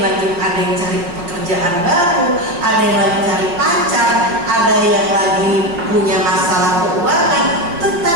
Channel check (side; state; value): left; late; 5.6 ms